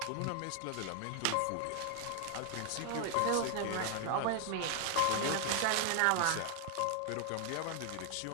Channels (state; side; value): different; both; correlation 0.00